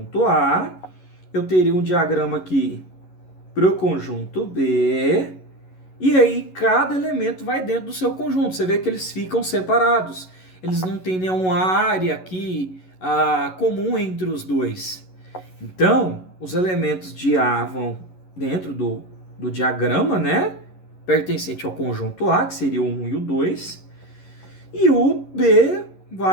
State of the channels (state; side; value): late; right; 11 ms